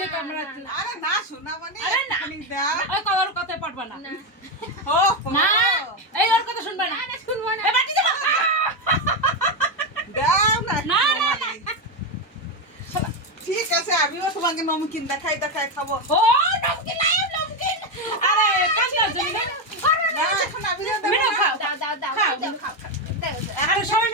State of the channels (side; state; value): both; normal; correlation 0.09